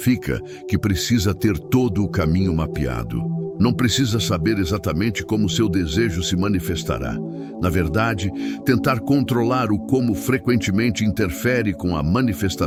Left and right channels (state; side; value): identical; both; correlation 1.00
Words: que precisa ter todo o caminho mapeado. Não precisa saber exatamente como seu desejo se manifestará. Na verdade, tentar controlar o como frequentemente interfere com a